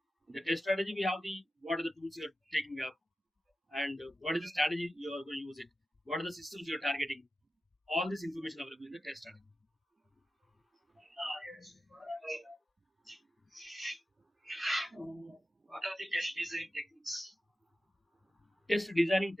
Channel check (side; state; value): both; normal; correlation 0.93